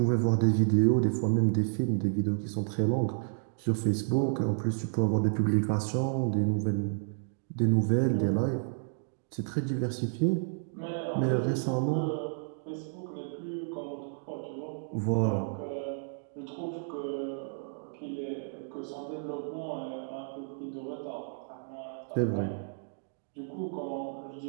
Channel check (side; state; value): left; silent; digital silence